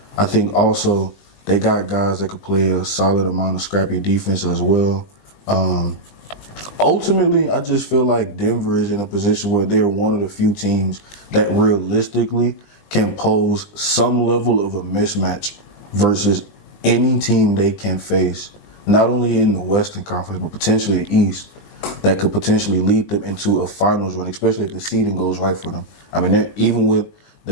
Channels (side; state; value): right; late; 20 ms